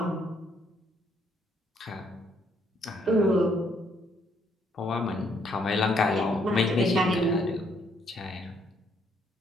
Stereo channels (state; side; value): normal; both; correlation 0.69